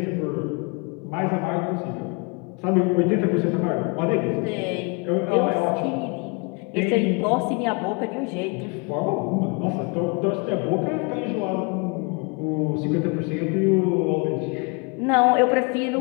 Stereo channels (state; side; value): quieter; right; 31.3 dB